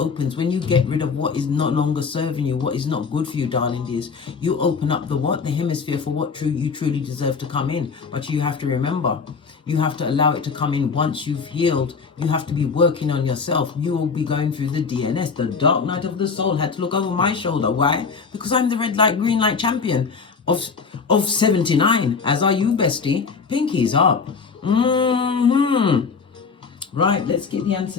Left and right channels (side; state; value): right; quieter; 5.3 dB